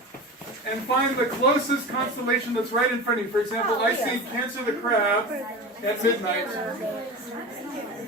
and find the closest constellation that's right in front of you. For example, I see Cancer the Crab at midnight.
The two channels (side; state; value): both; normal; correlation 0.29